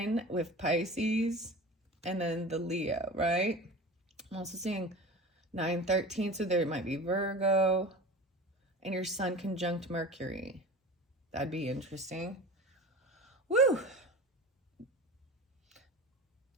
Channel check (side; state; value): both; normal; correlation 0.34